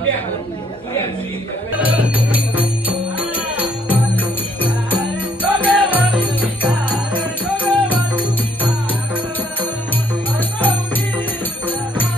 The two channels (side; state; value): both; normal; correlation 0.67